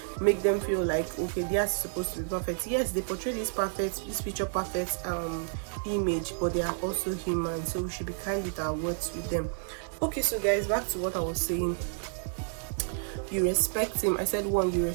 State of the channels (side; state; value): left; silent; 58 dB below the other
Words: make them feel like, okay, they are supposed to be perfect. Yes, they portray this picture perfect image, but they are also human, so we should be kind with our words with them. Okay, so guys, back to what I was saying. You respect him. I said 1, you